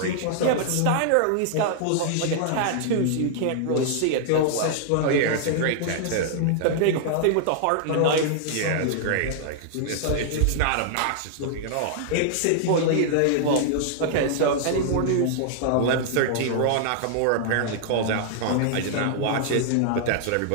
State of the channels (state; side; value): different; both; correlation -0.01